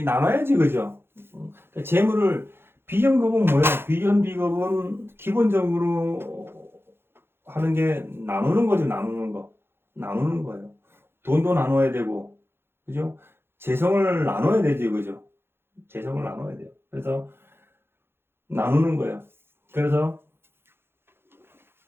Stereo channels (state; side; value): late; left; 0.11 ms